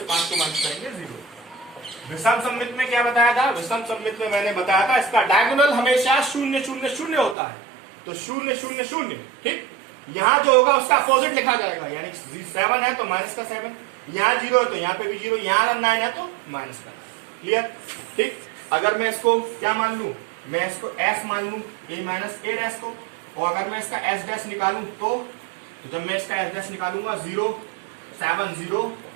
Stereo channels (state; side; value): drops out; left; at 7.4 s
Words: 5 को माइनस करेंगे 0। विषम सममित में क्या बताया था, विषम सममित में मैंने बताया था इसका डायगोनल हमेशा 0 0 0 होता है, तो 0 0 0, ठीक, यहाँ जो होगा उसका अपोजिट लिखा जाएगा, यानी 7 है तो माइनस का 7, यहाँ 0 है तो यहाँ पे भी 0, यहाँ अगर 9 है तो माइनस का 9, क्लियर, ठीक। अगर मैं इसको क्या मान लू, मैं इसको s मान लू, a माइनस a डैश को, और अगर मैं इसका s डैश निकालू तो जब मैं इसका s डैश निकालूंगा 0 7 0